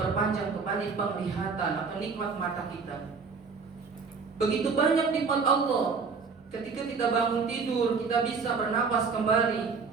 kembali penglihatan atau nikmat mata kita. Begitu banyak nikmat Allah. Ketika kita bangun tidur kita bisa bernapas kembali.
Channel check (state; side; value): quieter; left; 5.1 dB